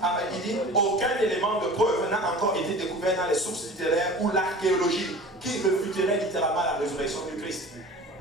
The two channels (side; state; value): both; normal; correlation 0.40